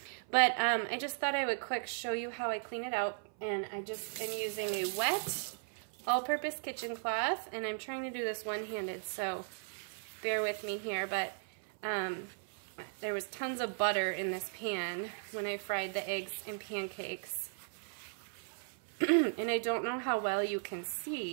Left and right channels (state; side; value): silent; left; 53 dB below the other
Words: But I just thought I would quick show you how I clean it out. And I just am using a wet all-purpose kitchen cloth, and I'm trying to do this one-handed, so bear with me here, but there was tons of butter in this pan when I fried the eggs and pancakes. And I don't know how well you can